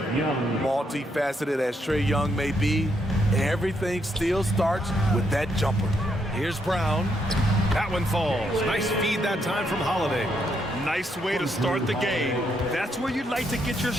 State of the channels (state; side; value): normal; both; correlation 0.76